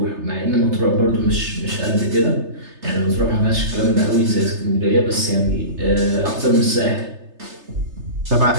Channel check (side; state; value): left; late; 3.3 ms